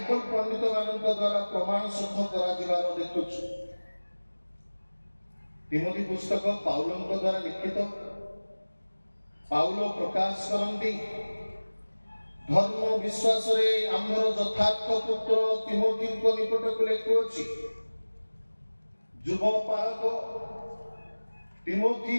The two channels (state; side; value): inverted; both; correlation -1.00